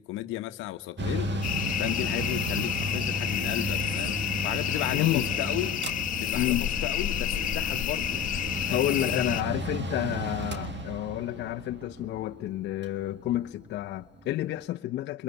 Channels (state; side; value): quieter; right; 7.3 dB